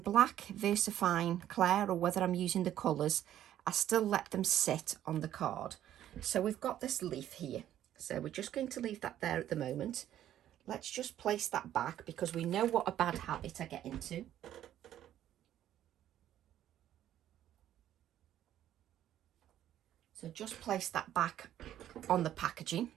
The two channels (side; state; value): left; quieter; 11.8 dB